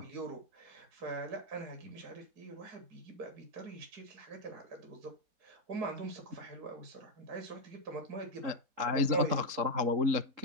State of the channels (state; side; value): late; left; 3.8 ms